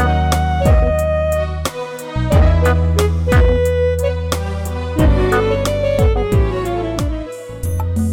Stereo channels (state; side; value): identical; both; correlation 1.00